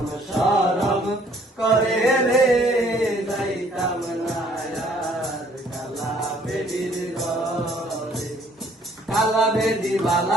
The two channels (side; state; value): both; normal; correlation 0.61